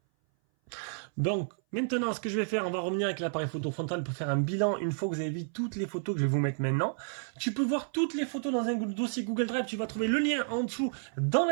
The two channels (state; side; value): silent; left; 57 dB below the other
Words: Donc, maintenant, ce que je vais faire, on va revenir avec l'appareil photo frontal pour faire un bilan une fois que vous avez vu toutes les photos que je vais vous mettre maintenant. Tu peux voir toutes les photos dans un dossier Google Drive. Tu vas trouver le lien en dessous dans